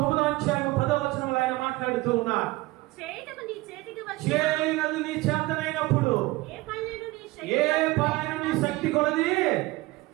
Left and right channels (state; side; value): quieter; left; 20.4 dB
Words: 9వ అధ్యాయము 10వ వచనం ఆయన మాట్లాడుతూ ఉన్నాడు. చేయనది నీ చేతనైనప్పుడు ఏ పనిని నీ శక్తి కొలది